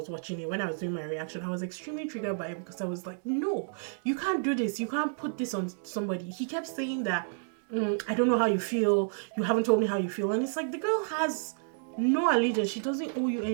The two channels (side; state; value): left; silent; digital silence